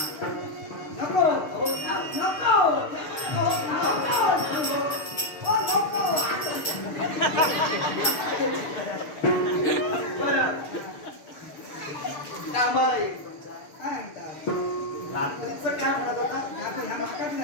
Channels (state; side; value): late; right; 6.7 ms